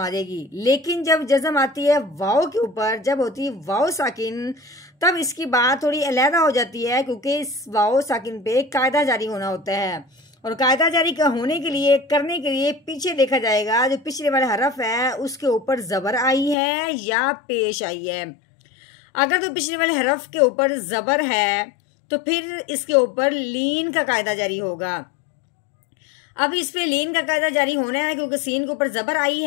जाएगी। लेकिन जब जज़म आती है वाओ के ऊपर, जब होती है वाओ साकिन, तब इसकी बात थोड़ी अलहदा हो जाती है, क्योंकि इस वाओ साकिन पे कायदा जारी होना होता है। और कायदा जारी का होने के लिए, करने के लिए पीछे देखा जाएगा जो पिछले वाला हरफ है उसके ऊपर ज़बर आई है या पेश आई है। अगर तो पिछले वाले हरफ के ऊपर ज़बर है तो फिर इसके ऊपर लीन का कायदा जारी होगा। अब इस पे लीन का कायदा जारी होना है क्योंकि सीन के ऊपर ज़बर आई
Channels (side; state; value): right; drops out; at 16.6 s